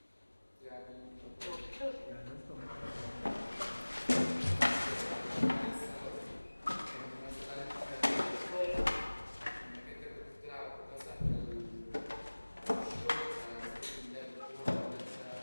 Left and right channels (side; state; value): both; inverted; correlation -1.00